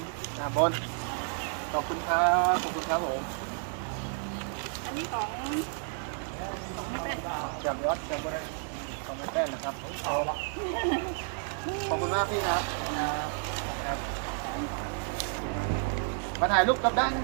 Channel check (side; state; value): left; silent; 55 dB below the other